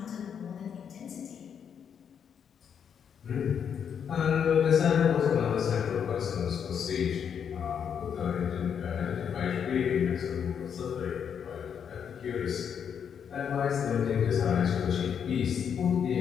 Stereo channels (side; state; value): right; quieter; 7.7 dB